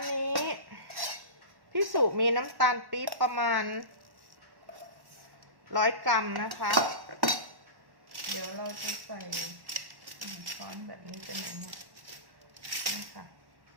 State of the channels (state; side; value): late; left; 1.1 ms